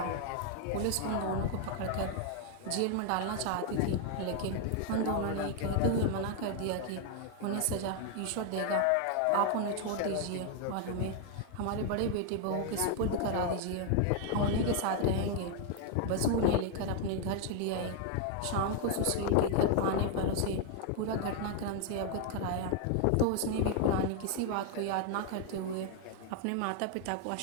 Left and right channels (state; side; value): different; both; correlation 0.00